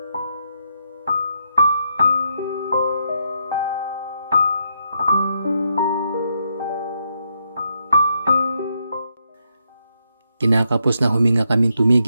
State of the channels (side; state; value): both; inverted; correlation -0.79